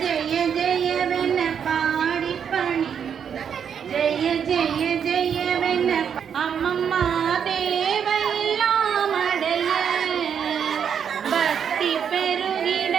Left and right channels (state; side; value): quieter; left; 7.7 dB